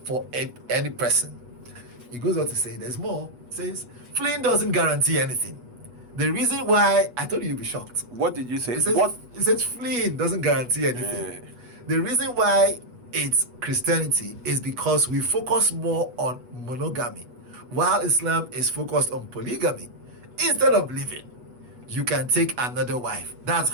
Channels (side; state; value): left; late; 8.2 ms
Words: for any person. He goes on to say, there's more. He says, fleeing doesn't guarantee anything. The reason why, I told you you'll be shocked. What did you say? He says fleeing doesn't guarantee anything. The reason why it's Christianity is because we focus more on monogamy, while Islam is focused on polygamy. Instead of living, you can take another wife. That's